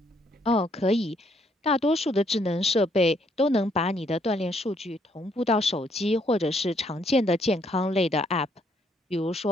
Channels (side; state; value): both; normal; correlation 0.70